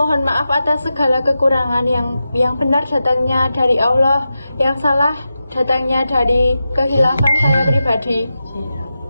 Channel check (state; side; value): inverted; both; correlation -0.91